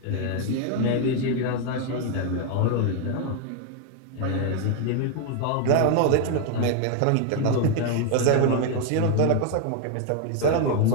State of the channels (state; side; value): different; both; correlation 0.01